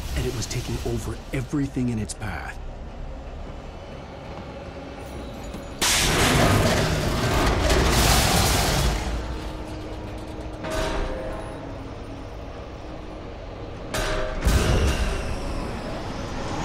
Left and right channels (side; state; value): both; identical; correlation 1.00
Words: and it was taking over everything in its path.